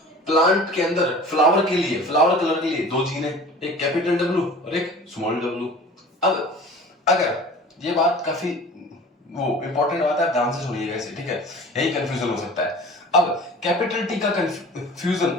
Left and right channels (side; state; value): both; normal; correlation 0.42